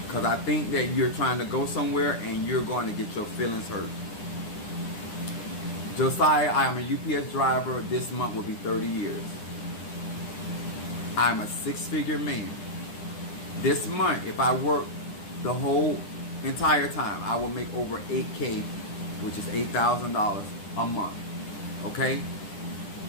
because I think that you're trying to go somewhere and you're going to get your feelings hurt. Josiah, I am a UPS driver. This month will be 30 years. I'm a six-figure man. This month, if I work the whole entire time, I will make over $8K, which is $8,000 a month. Okay?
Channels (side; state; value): right; late; 9.9 ms